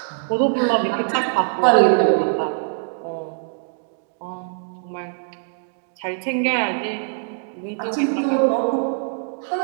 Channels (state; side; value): silent; left; digital silence